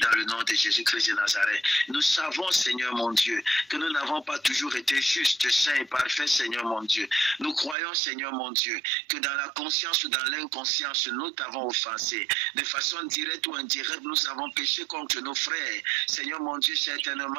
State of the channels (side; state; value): left; drops out; at 7.8 s